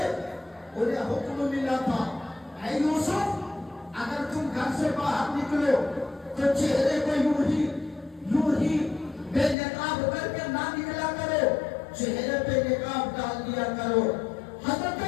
انہیں حکم ملا تھا، اے یوسف اگر تم گھر سے باہر نکلو تو چہرے کو یوں ہی بے چہرے پہ نقاب ڈال دیا کرو۔ حضرت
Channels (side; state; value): right; drops out; at 9.6 s